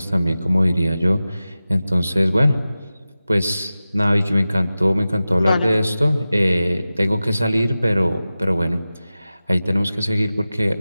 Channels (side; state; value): both; inverted; correlation -0.95